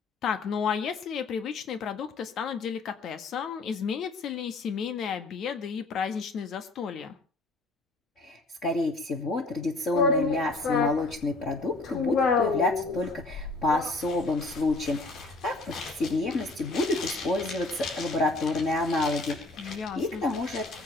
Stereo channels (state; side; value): quieter; right; 3.2 dB